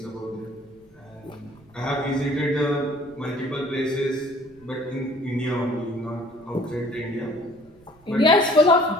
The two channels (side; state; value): right; noise; rumble, 28 dB below the sound